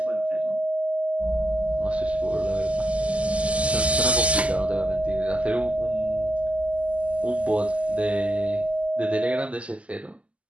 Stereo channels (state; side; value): late; left; 0.062 ms